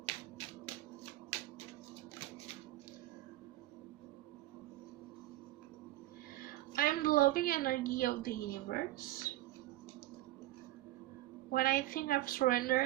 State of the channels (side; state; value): left; quieter; 16.0 dB